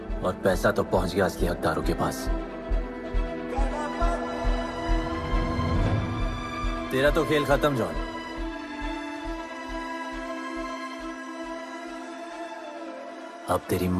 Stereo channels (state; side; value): identical; both; correlation 1.00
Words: और पैसा तो पहुंच गया असली हकदारों के पास। तेरा तो खेल खत्म जॉन। अब तेरी